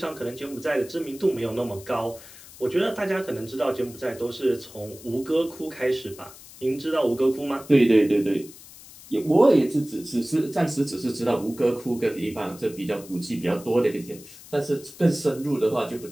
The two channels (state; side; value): noise; left; hiss, 19 dB below the sound